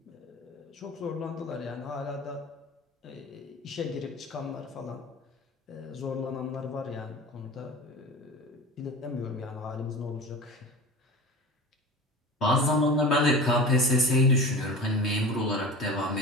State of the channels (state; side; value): normal; both; correlation 0.34